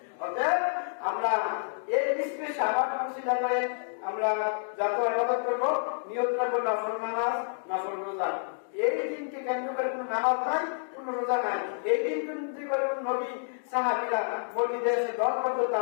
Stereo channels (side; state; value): right; silent; digital silence